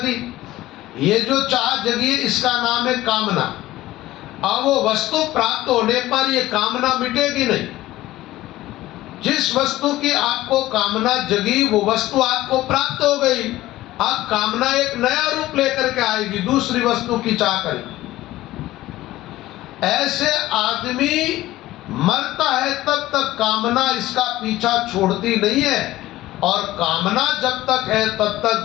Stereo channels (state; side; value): quieter; right; 16.2 dB